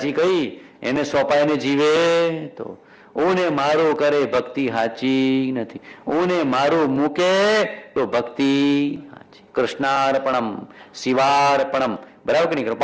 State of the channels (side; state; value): both; identical; correlation 1.00